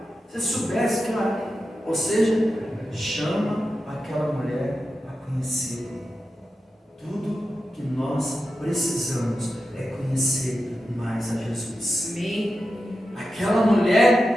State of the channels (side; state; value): both; normal; correlation 0.91